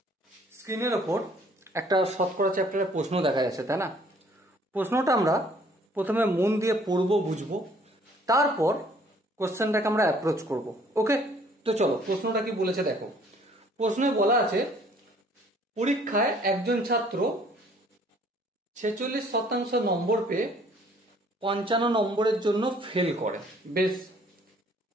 স্ক্রিনের ওপর একটা শতকরা চ্যাপ্টারের প্রশ্ন দেখা যাচ্ছে, তাই না? প্রশ্নটা আমরা প্রথমে মন দিয়ে পড়বো, বুঝবো, তারপর কোশ্চেনটাকে আমরা অ্যাপ্রোচ করব। ওকে, তো চলো প্রশ্নটা কি বলেছে দেখো। প্রশ্নে বলা আছে পরীক্ষায় একজন ছাত্র 46% নম্বর পেয়ে 55 নম্বরের জন্য ফেল করে, বেশ।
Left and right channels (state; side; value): normal; both; correlation 0.58